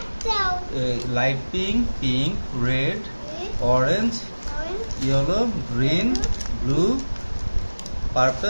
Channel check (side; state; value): both; inverted; correlation -1.00